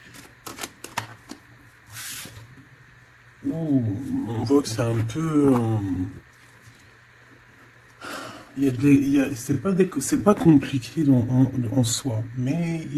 Oh, on voit que c'est un peu... c'est pas compliqué en soi, mais il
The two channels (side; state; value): both; identical; correlation 1.00